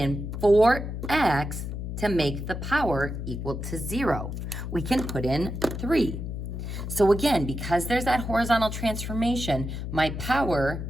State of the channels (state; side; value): noise; left; hum, 5 dB below the sound